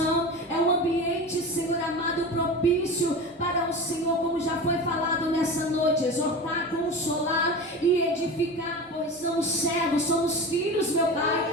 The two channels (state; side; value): normal; both; correlation 0.29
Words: é um ambiente, Senhor amado, propício para o Senhor, como já foi falado nessa noite, exortar, consolar e edificar, pois somos servos, somos filhos, meu